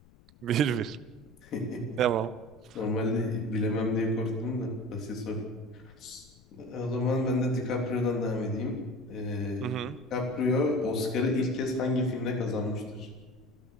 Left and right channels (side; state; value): left; noise; rumble, 26 dB below the sound